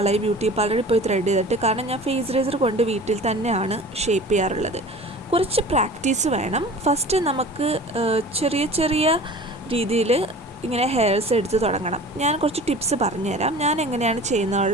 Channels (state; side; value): normal; both; correlation 0.41